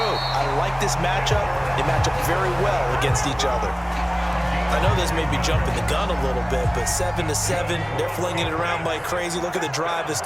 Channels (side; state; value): both; identical; correlation 1.00